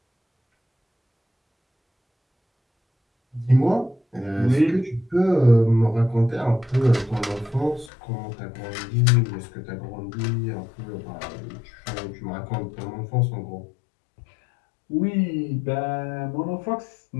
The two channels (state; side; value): drops out; right; at 7.9 s